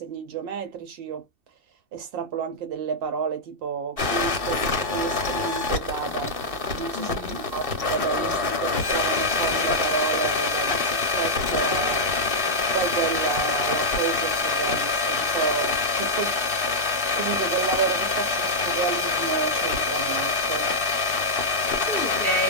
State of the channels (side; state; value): left; late; 2.7 ms